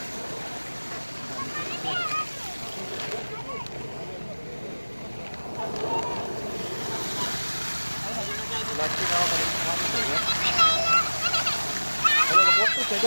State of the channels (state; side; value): inverted; both; correlation -1.00